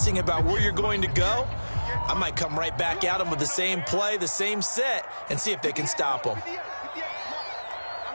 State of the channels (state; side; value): inverted; both; correlation -1.00